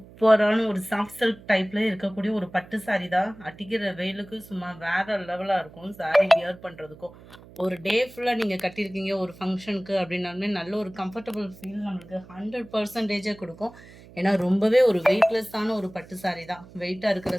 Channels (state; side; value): noise; right; hum, 21 dB below the sound